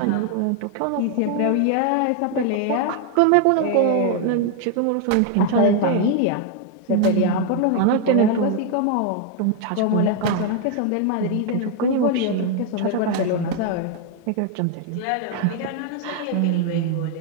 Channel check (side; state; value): both; different; correlation 0.00